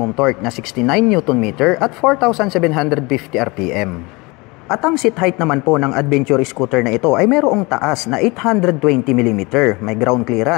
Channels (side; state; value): right; quieter; 25.5 dB